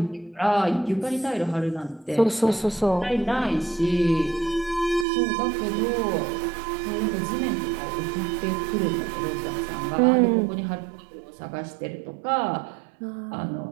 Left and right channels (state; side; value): drops out; left; at 5.1 s